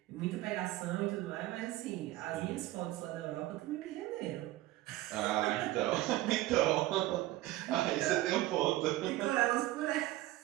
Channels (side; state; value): left; quieter; 16.8 dB